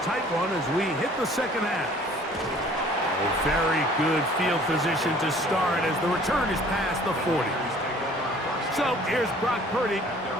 one as we hit the second half. A very good field position to start as the return is past the 40. So here's Brock Purdy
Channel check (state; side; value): normal; both; correlation 0.53